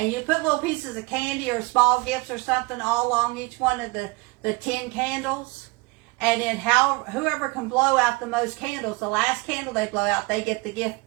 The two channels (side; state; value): left; quieter; 25.2 dB